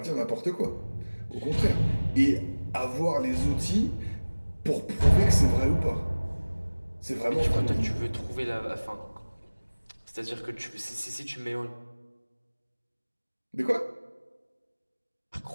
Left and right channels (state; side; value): inverted; both; correlation -1.00